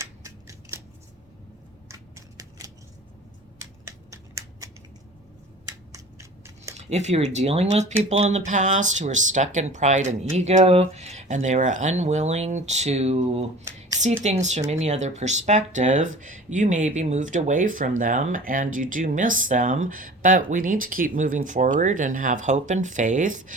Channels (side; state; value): both; normal; correlation 0.42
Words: If you were dealing with people in the past who were stuck in pride and ego, and they were unwilling to see things from any other perspective, you may be moved away from them and you do miss them, but we need to keep moving forward and have hope and faith.